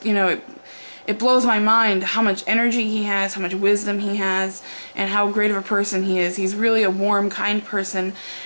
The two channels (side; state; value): both; inverted; correlation -1.00